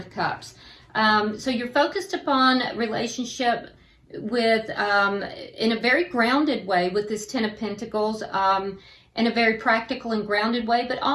Cups. So you're focused upon relationship with in a very grounded way with this Ten of Pentacles, in a very practical and grounded way, but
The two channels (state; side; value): identical; both; correlation 1.00